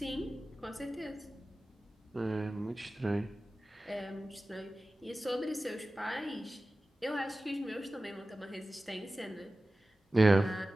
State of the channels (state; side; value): normal; both; correlation 0.96